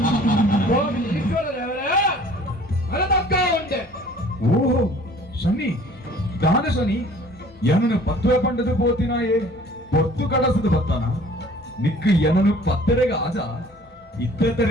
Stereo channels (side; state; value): both; normal; correlation 0.51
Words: ಓಹೋ ಶನಿ ದಾನ ಶನಿ ಎನನು ಪತ್ತುವೆ ಪಂಡದು ಪೋತಿನಾಯೇ ಪೊತ್ತು ಕಡಸದು ಬತ್ತಾನ ನಿಕ್ಕು ಎನನು ಪತ್ತರೆಗ ಆಜ